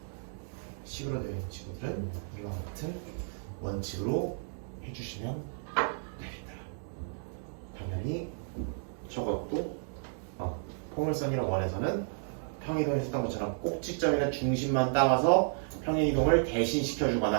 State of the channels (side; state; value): left; silent; digital silence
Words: 식으로 되어 있는 친구들은 이와 같은 원칙으로 해주시면 되겠다. 당연히 저것도 포물선이랑 원에서는 평행이동을 했던 것처럼 꼭지점이나 중심만 따와서 평행이동을